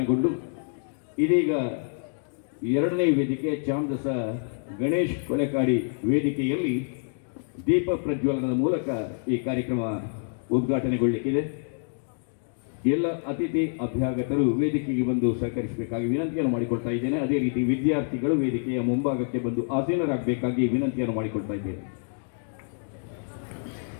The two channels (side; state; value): right; silent; digital silence